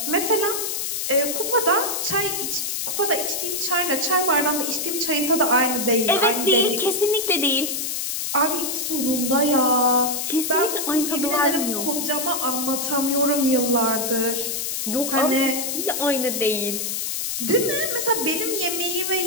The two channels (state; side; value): noise; left; hiss, 2 dB below the sound